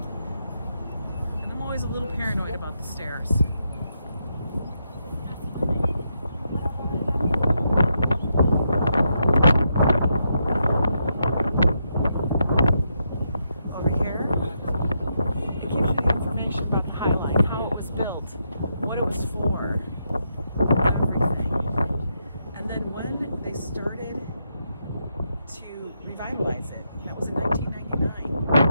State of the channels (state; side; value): inverted; both; correlation -0.81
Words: And I'm always a little paranoid about the stairs.